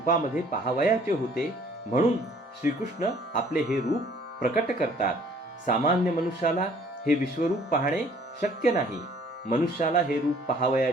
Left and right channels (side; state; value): both; normal; correlation 0.57